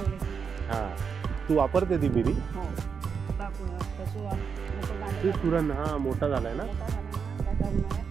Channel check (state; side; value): quieter; left; 6.1 dB